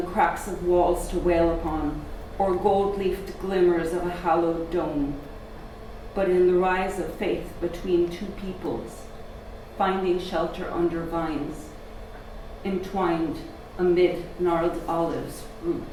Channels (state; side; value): identical; both; correlation 1.00